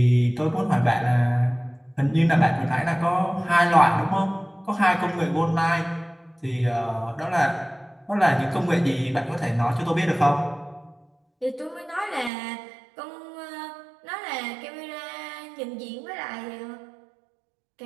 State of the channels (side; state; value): left; drops out; at 12.3 s